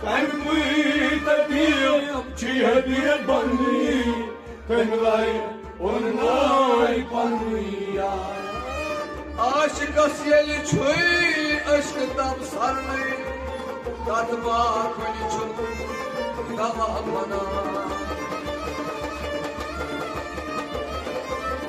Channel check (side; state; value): both; identical; correlation 1.00